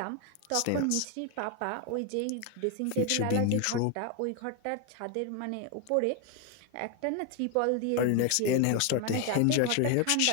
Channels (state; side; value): different; both; correlation 0.01